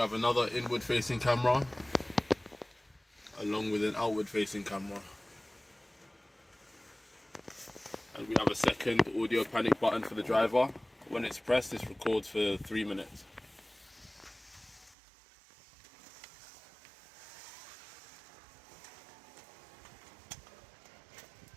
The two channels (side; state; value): left; drops out; at 15.0 s